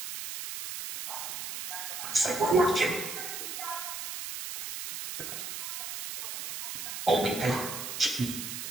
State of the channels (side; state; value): right; noise; hiss, 6 dB below the sound